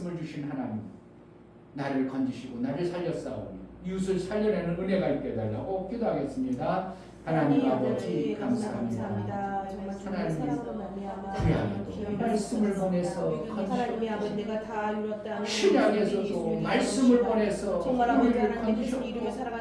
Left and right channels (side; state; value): both; identical; correlation 1.00